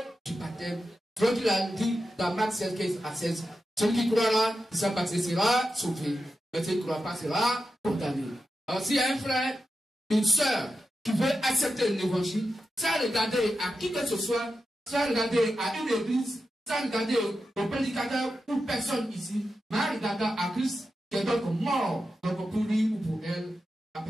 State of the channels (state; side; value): normal; both; correlation 0.90